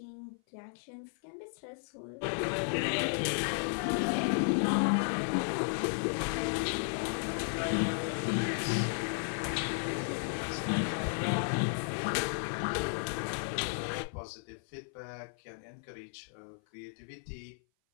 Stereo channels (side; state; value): right; silent; 55 dB below the other